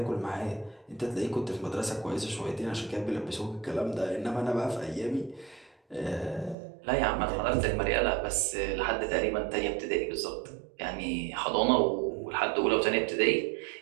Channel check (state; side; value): drops out; left; at 6.6 s